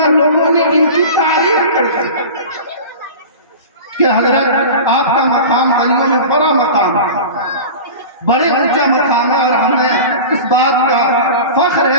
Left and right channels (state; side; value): inverted; both; correlation -0.33